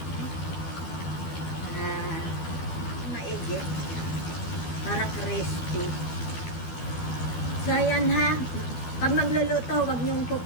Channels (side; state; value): right; late; 12 ms